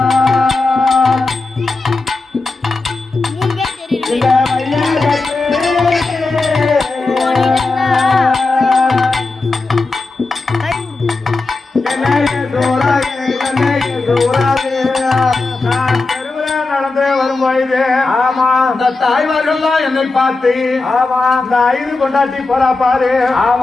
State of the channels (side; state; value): right; quieter; 3.5 dB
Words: தாய்மார்கள்லாம் என்னை பார்த்து இந்த ஐது கொண்டாட்டி போறா பாரு.